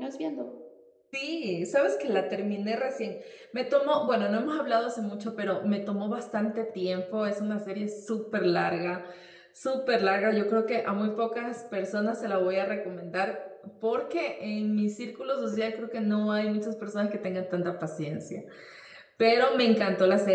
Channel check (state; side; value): identical; both; correlation 1.00